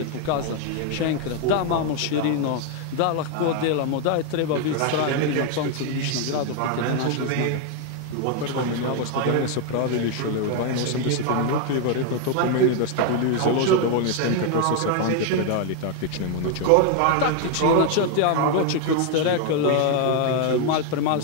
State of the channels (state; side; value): different; both; correlation 0.01